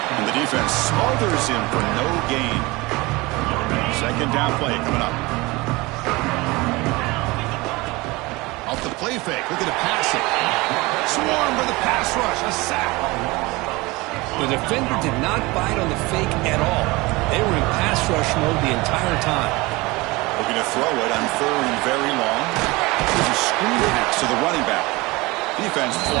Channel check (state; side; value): quieter; left; 22.8 dB